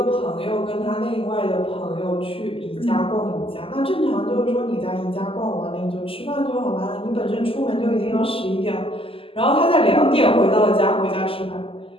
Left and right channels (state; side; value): late; right; 0.26 ms